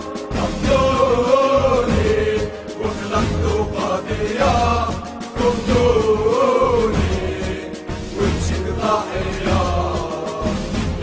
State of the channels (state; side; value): identical; both; correlation 1.00